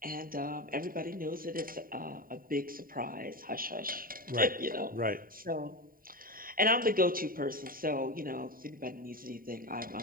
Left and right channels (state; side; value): late; left; 0.41 ms